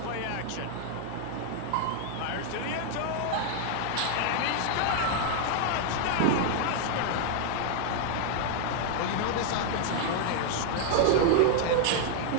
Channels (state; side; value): different; both; correlation 0.00